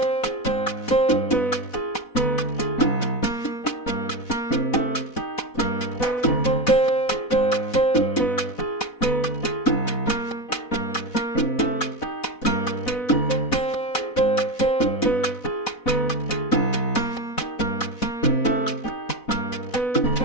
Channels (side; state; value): right; late; 4.1 ms